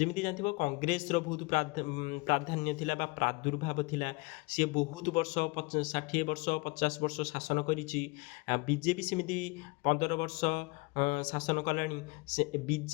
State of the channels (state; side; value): quieter; right; 26.1 dB